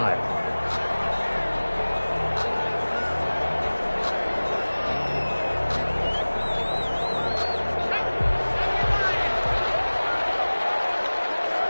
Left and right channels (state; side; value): inverted; both; correlation -1.00